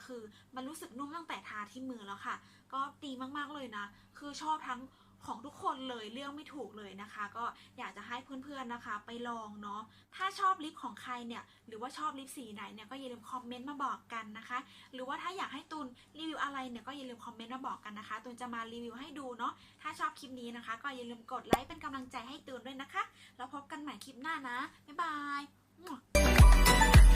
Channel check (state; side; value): identical; both; correlation 1.00